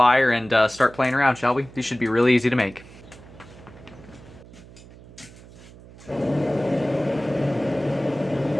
and start playing around, shall we? These should be really easy to make.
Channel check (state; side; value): noise; right; hum, 20 dB below the sound